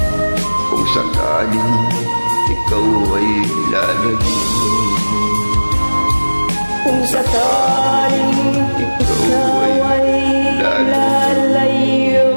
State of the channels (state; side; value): inverted; both; correlation -1.00